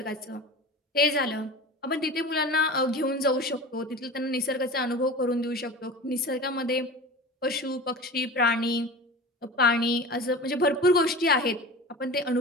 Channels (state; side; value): normal; both; correlation 0.34